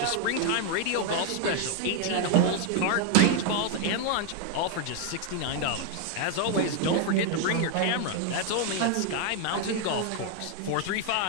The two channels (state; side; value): different; both; correlation 0.01